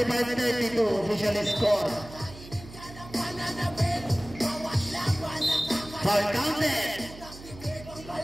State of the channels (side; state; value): right; noise; hum, 16 dB below the sound